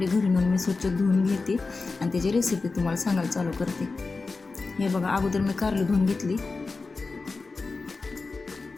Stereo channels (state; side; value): quieter; right; 4.0 dB